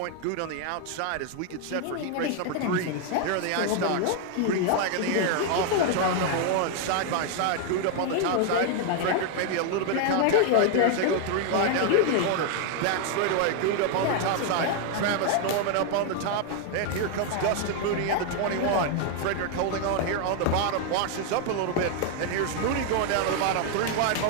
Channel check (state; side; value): different; both; correlation 0.00